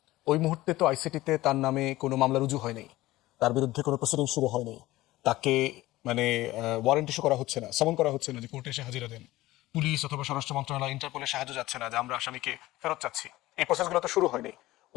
ওই মুহূর্তে তো আইসিটিতে তার নামে কোনো মামলা রুজু হয়নি, তার বিরুদ্ধে কোনো প্রসিডিং শুরু হয়নি, তাকে মানে ওয়ারেন্ট ইস্যু করা হচ্ছে না, সমন করা হচ্ছে না যে কোর্টে এসে হাজিরা দেন, পুলিশ অথবা স্বরাষ্ট্র মন্ত্রণালয়, ইন্টারপোলের সাহায্য যাচ্ছে না যে আমরা আসামিকে ফেরত চাচ্ছি, এই প্রসেসগুলো তো শুরু হয়নি।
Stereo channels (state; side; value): quieter; right; 17.5 dB